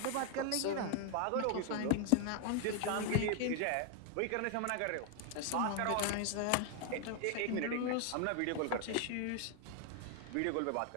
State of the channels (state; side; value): different; both; correlation 0.00